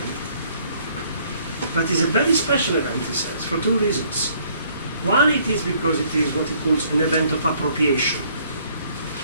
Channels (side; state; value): both; inverted; correlation -0.62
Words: But it's a very special event, he says, for two reasons. One, it is because it is what he calls an event of appropriation.